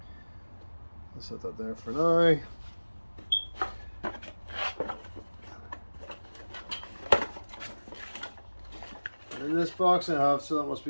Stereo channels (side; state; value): both; inverted; correlation -1.00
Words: I'll set that there for now. And in this box I have, so that must